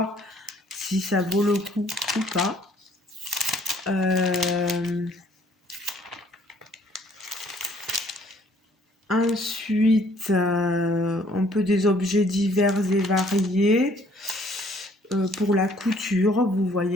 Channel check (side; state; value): both; normal; correlation 0.61